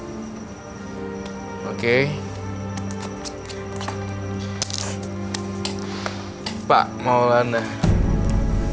Oke. Pak Maulana,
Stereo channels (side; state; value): both; identical; correlation 1.00